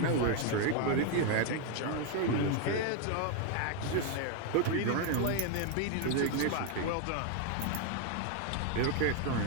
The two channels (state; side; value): different; both; correlation 0.01